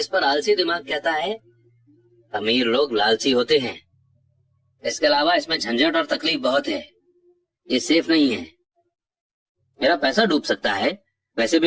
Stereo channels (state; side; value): identical; both; correlation 1.00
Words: पर आलसी दिमाग कहता है, अमीर लोग लालची होते हैं, इसके अलावा इसमें झंझट और तकलीफ बहुत है, ये सेफ नहीं है, मेरा पैसा डूब सकता है, वैसे